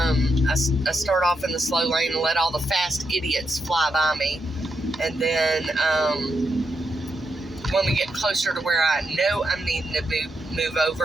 start off in the slow lane and let all the fast idiots fly by me. And then when we get closer to where I know I'm needing to move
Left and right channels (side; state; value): both; normal; correlation 0.83